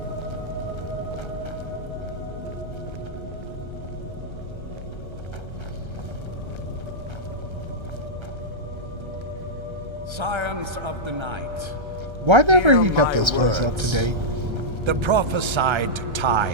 Scions of the night. Why never hear he got my this place up to words. date? The prophesied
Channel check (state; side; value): late; left; 1.3 ms